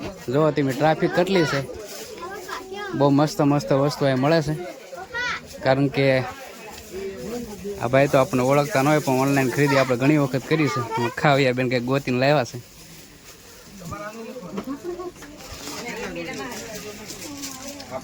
જો તમે ટ્રાફિક કેટલી છે. બહુ મસ્ત મસ્ત વસ્તુ અહીં મળે છે. કારણ કે આ ભાઈ તો આપણને ઓળખતા ન હોય પણ ઓનલાઈન ખરીદી આપણે ઘણી વખત કરી છે. ખાવ્યા બેન કંઈક ગોતીને લાવ્યા છે.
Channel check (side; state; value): both; identical; correlation 1.00